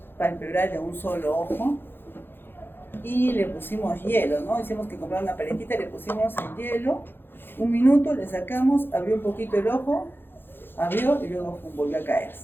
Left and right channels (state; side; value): late; right; 0.10 ms